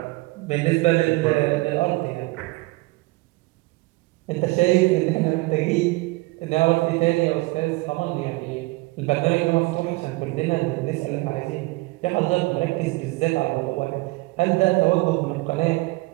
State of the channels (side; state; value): left; quieter; 22.8 dB